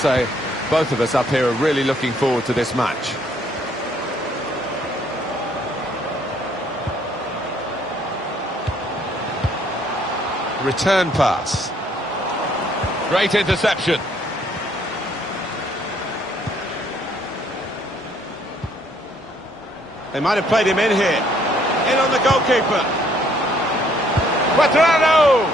both of us up here are really looking forward to this match. Return pass. Great interception. They might have played him in here. In on the goalkeeper. Quadrado!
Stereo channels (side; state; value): both; normal; correlation 0.65